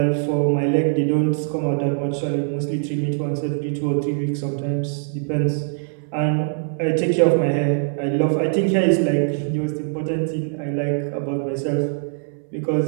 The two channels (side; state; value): left; silent; 61 dB below the other